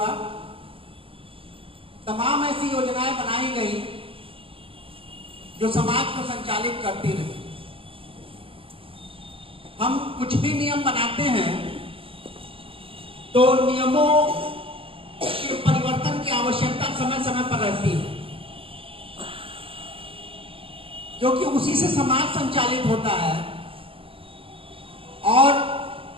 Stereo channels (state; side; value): late; left; 0.26 ms